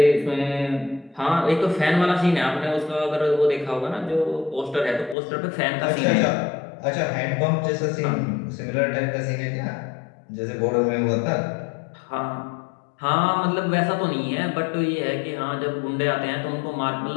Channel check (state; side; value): drops out; right; at 5.2 s